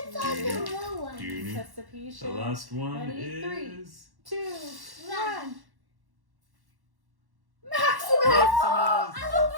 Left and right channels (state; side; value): late; left; 1.1 ms